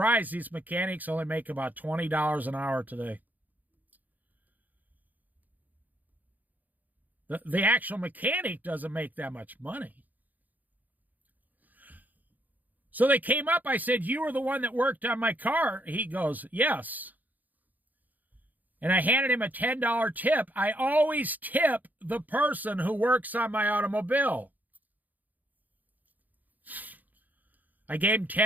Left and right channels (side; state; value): left; late; 0.082 ms